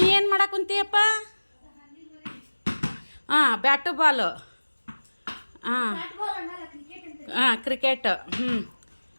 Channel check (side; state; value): both; inverted; correlation -1.00